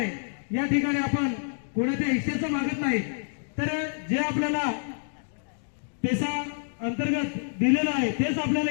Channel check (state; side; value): silent; right; digital silence